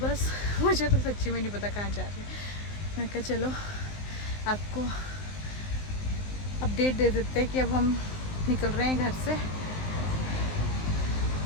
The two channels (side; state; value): right; late; 19 ms